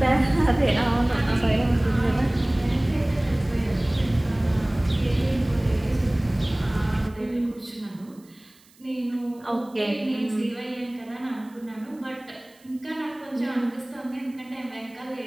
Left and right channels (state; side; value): noise; right; hiss, 29 dB below the sound